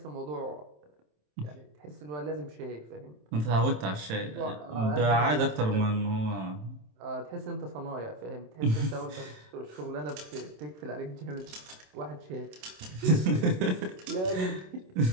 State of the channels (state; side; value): late; left; 27 ms